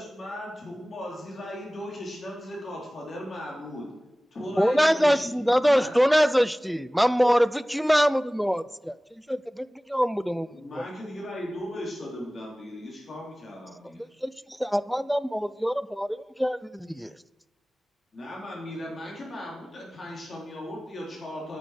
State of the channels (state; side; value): normal; both; correlation 0.98